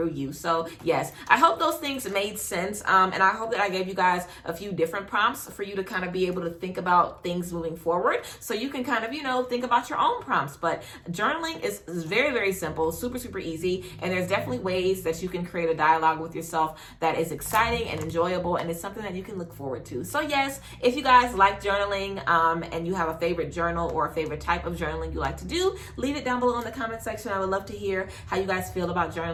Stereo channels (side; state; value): both; identical; correlation 1.00